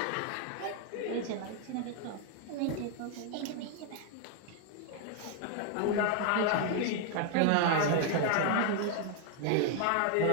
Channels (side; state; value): both; different; correlation 0.00